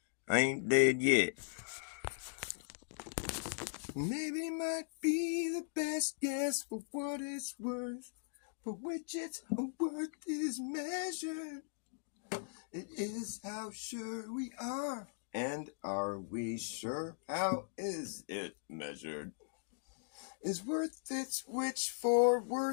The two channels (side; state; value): right; silent; digital silence